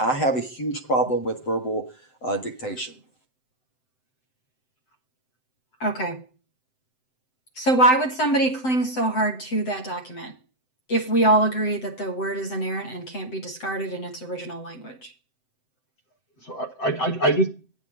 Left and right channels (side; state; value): right; late; 7.8 ms